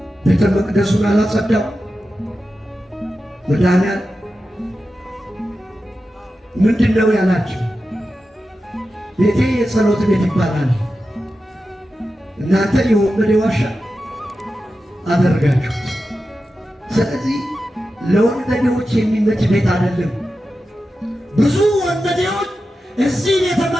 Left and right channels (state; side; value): normal; both; correlation 0.91